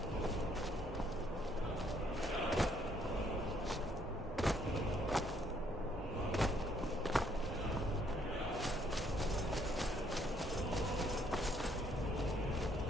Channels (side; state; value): both; normal; correlation 0.68